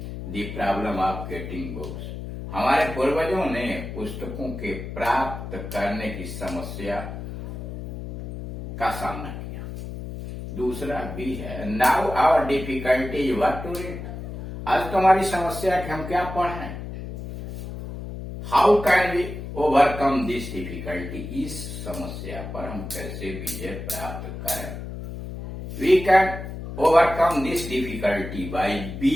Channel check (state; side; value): noise; left; hum, 8 dB below the sound